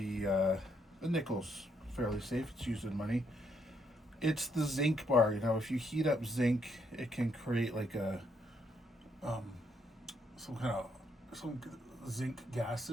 nickel's fairly safe. It's used in money. It's the zinc bar. If you heat up zinc, it can create like a um, some kind of some zinc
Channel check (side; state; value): both; normal; correlation 0.74